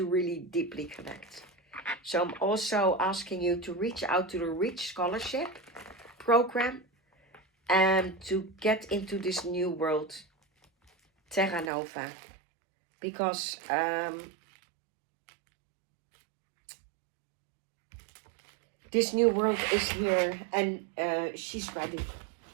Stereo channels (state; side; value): drops out; left; at 11.7 s